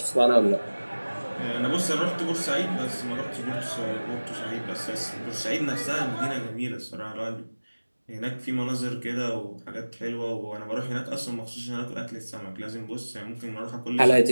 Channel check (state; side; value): inverted; both; correlation -1.00